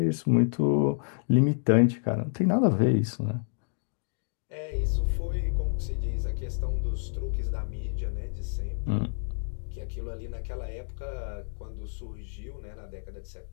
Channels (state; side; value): silent; right; digital silence